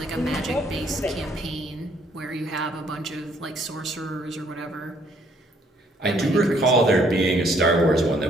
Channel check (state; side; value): normal; both; correlation 0.66